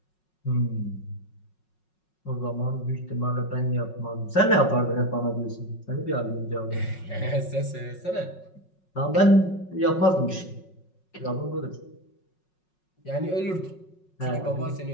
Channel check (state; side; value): late; right; 5.5 ms